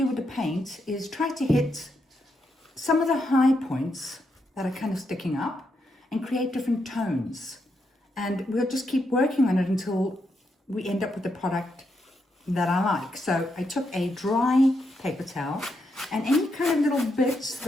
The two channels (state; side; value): normal; both; correlation 0.81